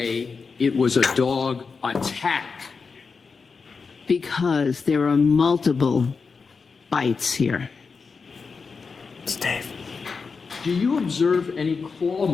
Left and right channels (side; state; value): right; quieter; 5.0 dB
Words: it was a dog attack? Because there are multiple bites here. Steve. Do you observe any claw